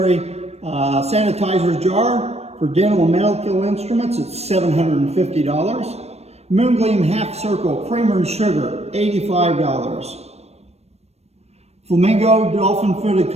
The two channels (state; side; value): late; left; 0.31 ms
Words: jar for dental and medical instruments. It's $750. Moongleam Half Circle Creamer and Sugar, $85. Flamingo Dolphin Footed